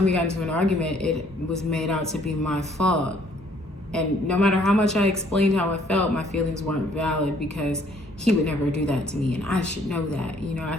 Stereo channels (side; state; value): both; normal; correlation 0.62